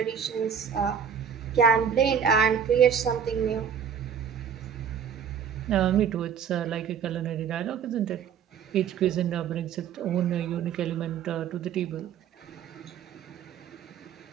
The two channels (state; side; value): quieter; left; 7.7 dB